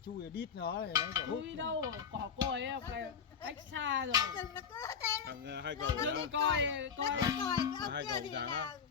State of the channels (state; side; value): quieter; right; 6.8 dB